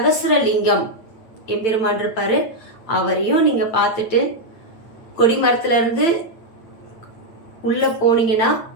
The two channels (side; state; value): right; late; 8.9 ms